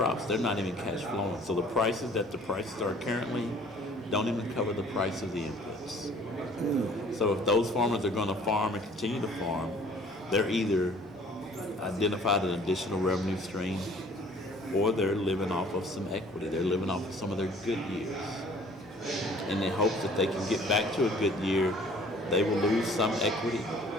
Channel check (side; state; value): both; normal; correlation 0.54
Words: they're not even cash flowing. So the prices are currently don't even cover the price of the inputs. So if those farmers are going to farm and continue to farm, they're either identified an additional revenue stream or they're living off of some equity. They're living off of some of their good years. In the hopes that they can get back to a good year, they will lose some equity.